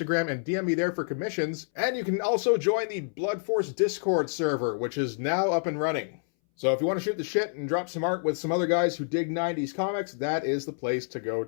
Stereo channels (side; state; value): right; silent; 59 dB below the other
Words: and DM me there for commissions, and you can also join the Blood Force Discord server, which is now up and running. So if you want to shoot the shit and drop some art with some other guys who dig 90s comics, that is the place to go